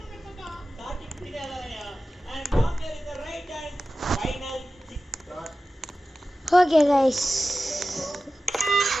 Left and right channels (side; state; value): both; normal; correlation 0.94